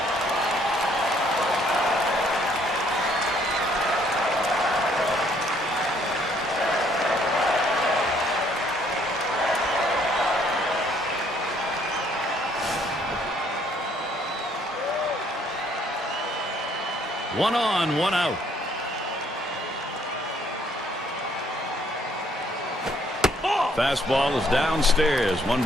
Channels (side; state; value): both; normal; correlation 0.65